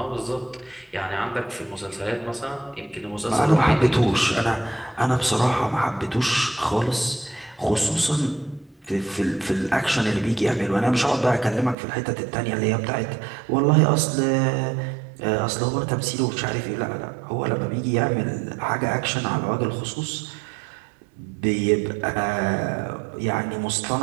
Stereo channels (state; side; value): drops out; left; at 11.8 s